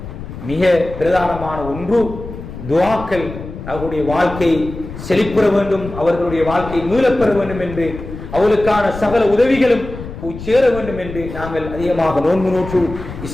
மிக பிரதானமான ஒன்று துஆக்கள். அவர்களுடைய வாழ்க்கை செழிப்புற வேண்டும், அவர்களுடைய வாழ்க்கை மீளப்பெற வேண்டும் என்று, அவர்களுக்கான சகல உதவிகளும் சேர வேண்டும் என்று நாங்கள் அதிகமாக நோன்பு நோற்று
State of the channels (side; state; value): left; noise; rumble, 11 dB below the sound